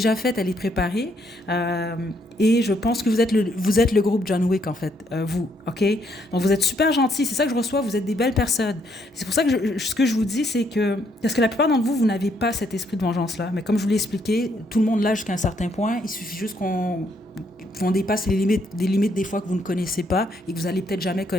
faite, elle est préparée. Et je pense que vous êtes le groupe John Wick, en fait, vous, OK? Donc, vous êtes super gentils, c'est ça que je reçois, vous êtes des belles personnes. C'est pour ça que ce que je vous dis, c'est que... Parce que la plupart d'entre vous, vous n'avez pas cet esprit de vengeance-là. Mais comme je vous l'ai expliqué, tout le monde l'a jusqu'à un certain point. Il suffit juste qu'on dépasse les limites des fois que vous ne connaissez pas et que vous allez peut-être jamais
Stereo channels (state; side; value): normal; both; correlation 0.72